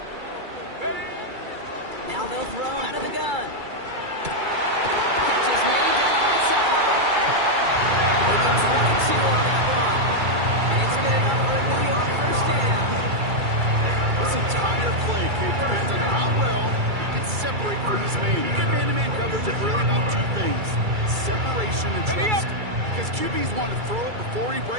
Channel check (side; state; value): left; late; 2.3 ms